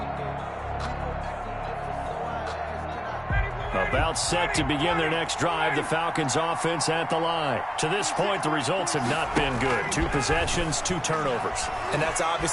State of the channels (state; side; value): identical; both; correlation 1.00